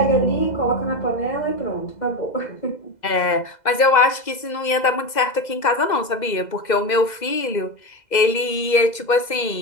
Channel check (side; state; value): right; late; 2.0 ms